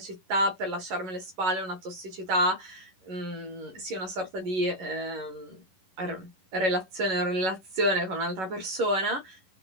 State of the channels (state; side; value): late; left; 11 ms